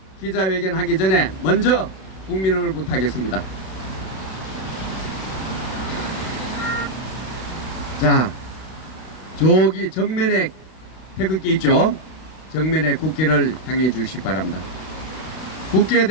기자회견 하기 전에 먼저 국민을 부탁하겠습니다. 자, 저기 정면에 태극기 있죠? 정면에 국기를 향해 주시기 바랍니다. 국기에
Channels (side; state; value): right; late; 32 ms